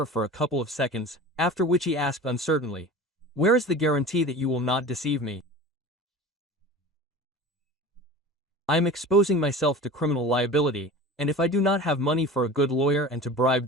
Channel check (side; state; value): both; normal; correlation 0.36